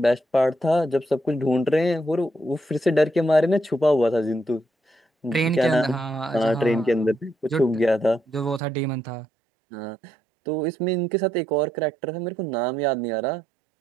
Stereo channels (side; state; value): left; drops out; at 8.6 s